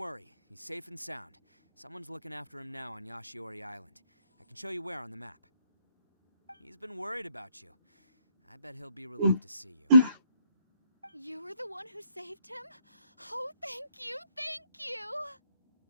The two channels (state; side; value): inverted; both; correlation -0.74